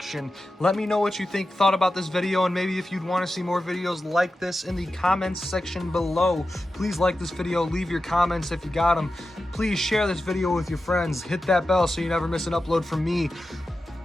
Let me know what you thought about this video, and maybe if you'd want to see more videos like this in the comments section below. Please like this video, leave your comments if you got them. Please share this video with your friends. Hit that bell so you never miss an upload from me.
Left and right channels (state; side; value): normal; both; correlation 0.92